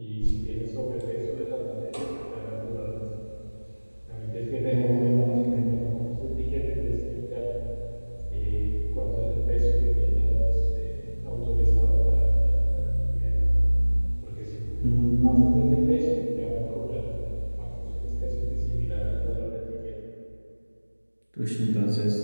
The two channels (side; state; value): both; inverted; correlation -1.00